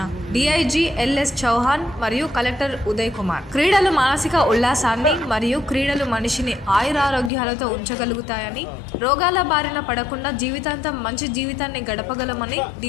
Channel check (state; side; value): drops out; right; at 7.3 s